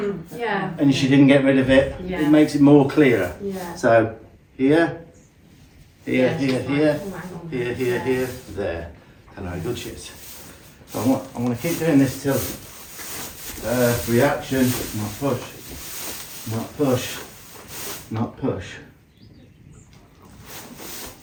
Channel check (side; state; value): both; identical; correlation 1.00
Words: Yeah. and she didn't get rid of it. Yeah. It makes it more clearer. Yeah. So here, here, Yeah, here, she's like, here, oh, hang on. here, here, here, there. And how good she is. So I'm going to keep doing this till reaction, not push, not push, not push.